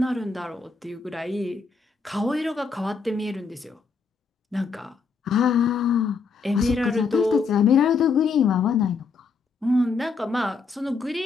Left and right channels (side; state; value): right; quieter; 5.0 dB